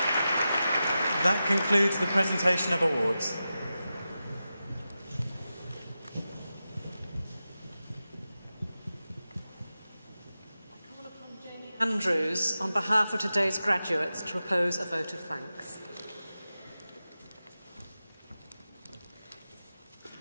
That concludes the presentation of awards. Andrews, on behalf of today's graduates, to propose a vote of thanks.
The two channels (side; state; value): both; inverted; correlation -0.92